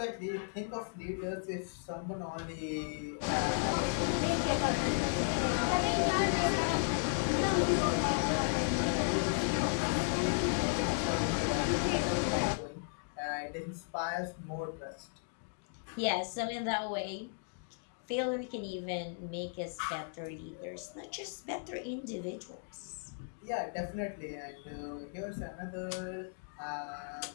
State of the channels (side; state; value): right; silent; digital silence